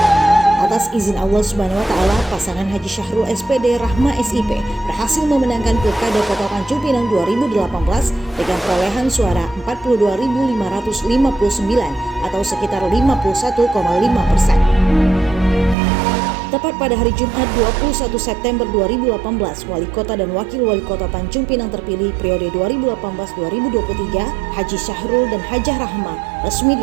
Atas izin Allah Subhanahu wa Ta'ala, pasangan Haji Syahrul SPD Rahma SIP berhasil memenangkan Pilkada Kota Tanjung Pinang 2018 dengan perolehan suara 42.559 atau sekitar 51,5%. Tepat pada hari Jumat 21 September 2018, Wali Kota dan Wakil Wali Kota Tanjung Pinang terpilih periode 2018-2023, Haji Syahrul dan Hajah Rahma resmi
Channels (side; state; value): left; drops out; at 15.8 s